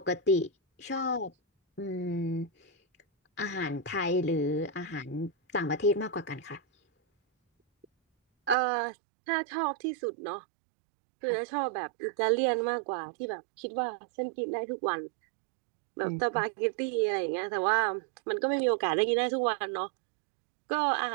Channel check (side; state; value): left; drops out; at 8.6 s